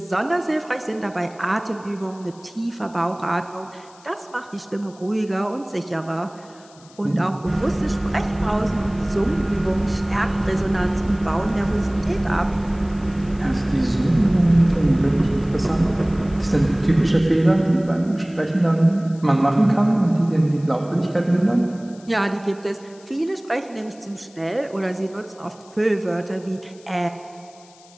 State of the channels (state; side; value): noise; left; hiss, 26 dB below the sound